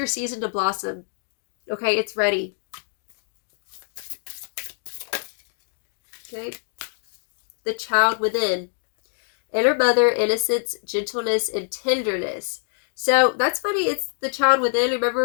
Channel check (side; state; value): right; silent; 59 dB below the other